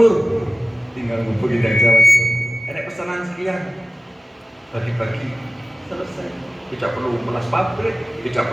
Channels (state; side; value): normal; both; correlation 0.96